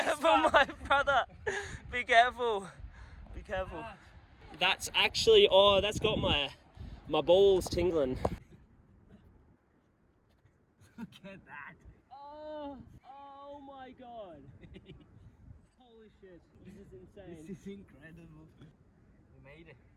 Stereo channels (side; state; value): both; identical; correlation 1.00